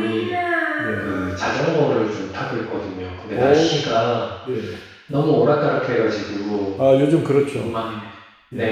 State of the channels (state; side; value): identical; both; correlation 1.00